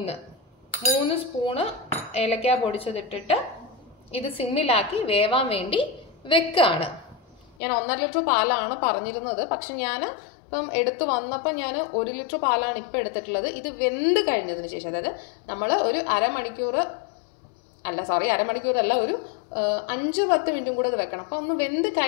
3 സ്പൂണ് ഏലക്ക പൊടിച്ചതിട്ടിട്ട് ഇത് സിമ്മിലാക്കി വേവാൻ വേണ്ടി വെക്കുകയാണ്. ഞാൻ 1.5 ലിറ്റർ പാലാണ് പറഞ്ഞിരുന്നത്. പക്ഷെ ഞാൻ ഇപ്പം എടുത്തു വന്നപ്പോൾ ഞാൻ 1 ലിറ്റർ പാലാണ് ഇപ്പം എടുത്തിട്ടുള്ളത്. ഇത് വെന്ത് കഴിഞ്ഞതിന് ശേഷം, അതായത് നമ്മൾ ഒരു അരമണിക്കൂറല്ല, ഒരു 5-10 മിനിറ്റും കൂടെ അത് വെക്കണം. അപ്പം ഒന്ന് വെന്ത്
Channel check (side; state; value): right; drops out; at 7.6 s